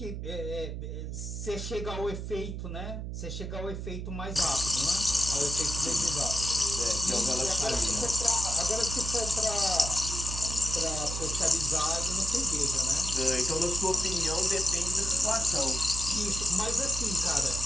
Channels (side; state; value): right; noise; hum, 6 dB below the sound